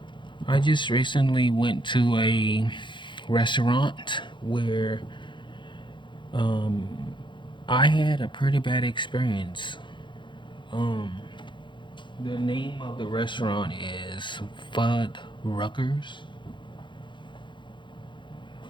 I just recently went to a restaurant where um, I had a pretty bad experience. Um, the name of the restaurant is Fuddruckers.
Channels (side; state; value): right; late; 0.23 ms